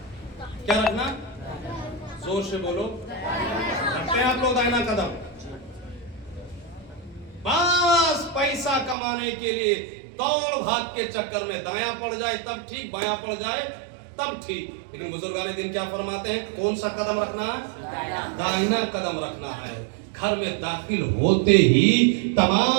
کیا رکھنا؟ زور سے بولو. رکھتے ہیں آپ لوگ داہنا قدم؟ بس پیسہ کمانے کے لیے دوڑ بھاگ کے چکر میں دایاں پڑ جائے تب ٹھیک, بایاں پڑ جائے تب ٹھیک. لیکن بزرگان دین کیا فرماتے ہیں؟ کون سا قدم رکھنا ہے؟ داہنا قدم رکھنا ہے. گھر میں داخل ہوتے ہی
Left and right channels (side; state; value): left; drops out; at 9.0 s